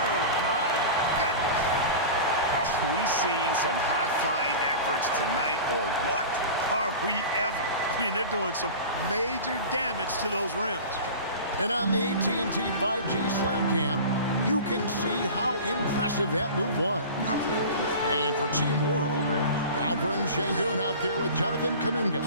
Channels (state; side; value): inverted; both; correlation -0.35